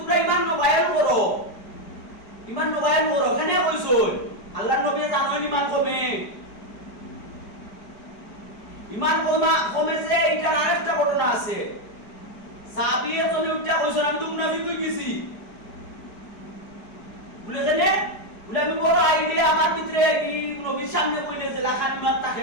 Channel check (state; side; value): late; right; 4.9 ms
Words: ইমান বায়ান করো ইমান বায়ান করো কেন কইছো আল্লাহর নবী জানেন ইমান কমে ইমান কমে যে এটার আরেকটা ঘটনা আছে সাহাবীয়ে জনে উঠা কইছেন আমি তো মুনাফিক হই গেছি বলে জানে বলে আমি বড় আইলে আমার ভিতরে এই নবীর সামনে কইলে যে লাখান ইমান তাকে